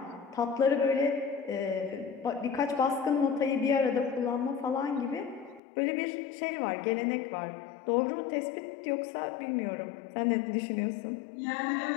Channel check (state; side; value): drops out; right; at 5.6 s